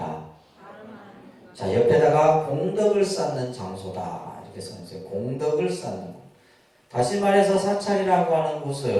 자, 옆에다가 공덕을 쌓는 장소다. 이렇게 써있어요. 공덕을 쌓는 곳. 다시 말해서 사찰이라고 하는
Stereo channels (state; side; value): identical; both; correlation 1.00